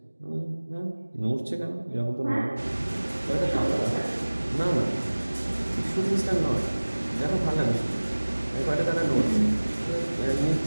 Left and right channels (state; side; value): inverted; both; correlation -1.00